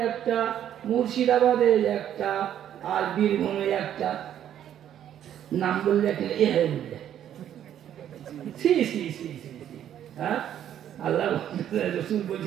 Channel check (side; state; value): left; quieter; 10.5 dB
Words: 1টা, মুর্শিদাবাদে 1টা, আর বীরভূমে 1টা। নাম বললে এ হয়ে বললে হ্যাঁ, আল্লাহ রাসূল